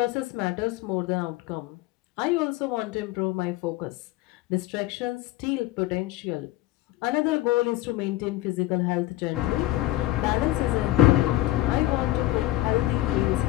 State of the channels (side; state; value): right; quieter; 16.5 dB